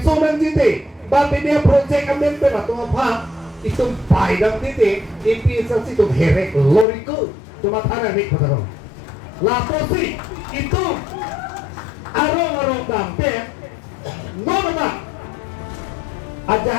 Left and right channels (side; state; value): right; drops out; at 6.9 s